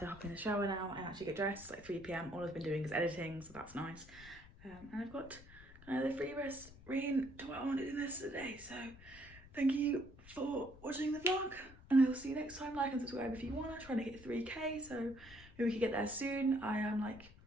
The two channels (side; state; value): left; noise; rumble, 19 dB below the sound